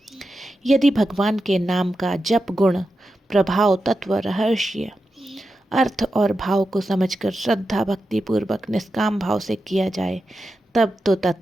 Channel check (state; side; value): normal; both; correlation 0.89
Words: यदि भगवान के नाम का जप गुण, प्रभाव, तत्व, रहस्य, अर्थ और भाव को समझकर श्रद्धा भक्ति पूर्वक निष्काम भाव से किया जाए, तब तो